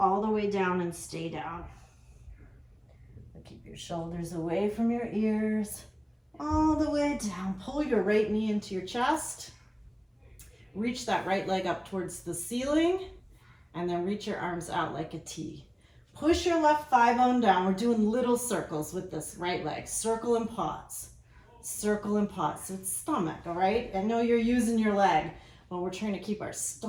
the way down and stay down. Keep your shoulders away from your ears. All the way down. Pull your right knee into your chest. Reach that right leg up towards the ceiling. And then reach your arms out like a T. Push your left thigh bone down. We're doing little circles with this right leg. Circle and pause. Circle and pause. So it's stomach, all right? I know you're using your leg, but we're trying to keep our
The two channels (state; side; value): identical; both; correlation 1.00